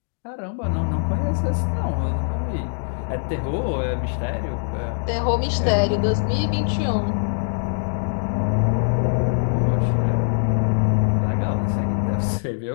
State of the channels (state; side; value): silent; right; digital silence